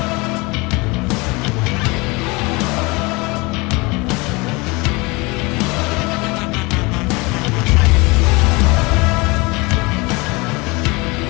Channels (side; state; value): right; quieter; 25.5 dB